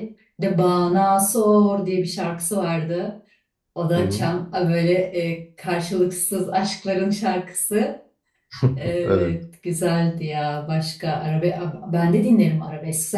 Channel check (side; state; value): both; identical; correlation 1.00